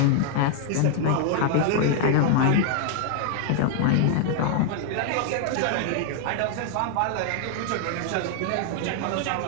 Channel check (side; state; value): both; different; correlation 0.00